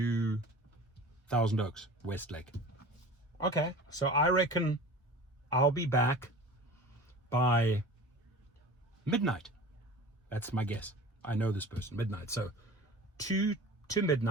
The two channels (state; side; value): normal; both; correlation 0.39